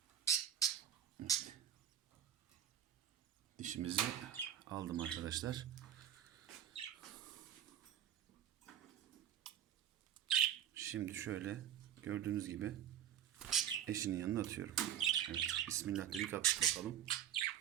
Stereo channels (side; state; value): left; quieter; 10.1 dB